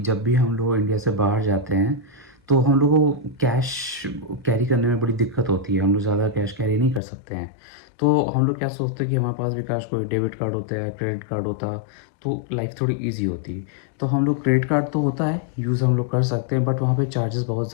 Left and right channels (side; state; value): right; drops out; at 7.0 s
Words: भी हम लोग इंडिया से बाहर जाते हैं तो हम लोगों को कैश कैरी करने में बड़ी दिक्कत होती है। हम लोग ज़्यादा कैश कैरी नहीं कर सकते हैं। तो हम लोग क्या सोचते हैं कि हमारे पास भी कैश कोई डेबिट कार्ड होता है, क्रेडिट कार्ड होता, तो लाइफ थोड़ी ईजी होती। तो हम लोग क्रेडिट कार्ड तो होता है, यूज़ हम लोग कर सकते हैं, बट वहाँ पे चार्जेस बहुत